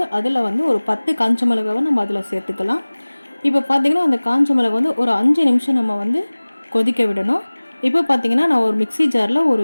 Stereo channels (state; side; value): inverted; both; correlation -1.00